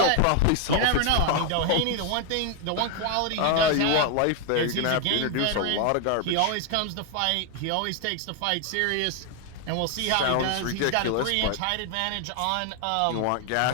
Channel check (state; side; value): different; both; correlation 0.00